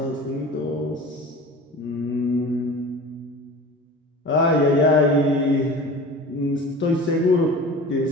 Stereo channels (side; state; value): both; normal; correlation 0.37